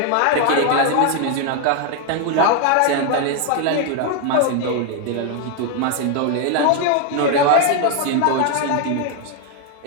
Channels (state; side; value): different; both; correlation 0.01